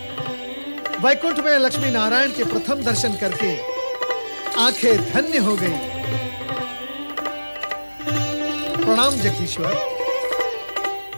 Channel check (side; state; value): both; inverted; correlation -1.00